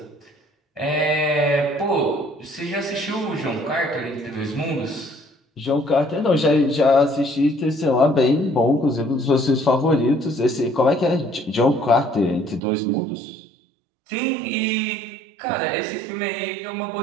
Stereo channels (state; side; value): drops out; left; at 12.6 s